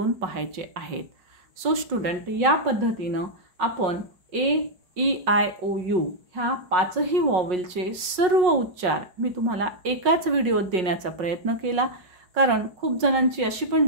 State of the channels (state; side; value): late; left; 5.5 ms